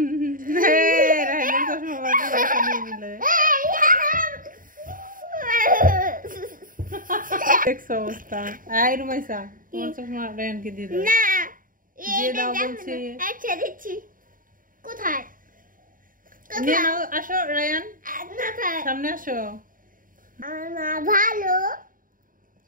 অবস্থা। রুমাইসা, তোমার চশমা রায়ানকে দিয়ে দাও। না, দিয়ে দাও বলছি। আচ্ছা দিচ্ছি। কোথায়? নিয়ে নাও, আসো রায়ান, সামনে আসো। আমার ভালো,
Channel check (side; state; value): left; late; 0.40 ms